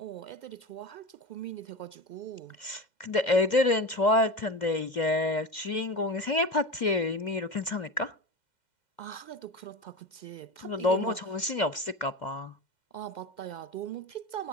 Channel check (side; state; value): right; late; 2.1 ms